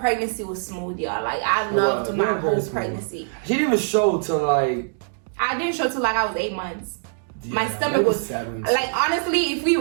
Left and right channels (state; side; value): silent; left; digital silence